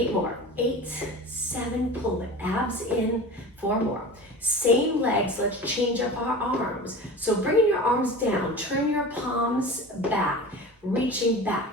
more. 8, 7, pull the abs in. 4 more. Same legs, let's change up our arms. So bringing your arms down, turn your palms back, reaching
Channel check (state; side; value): normal; both; correlation 0.34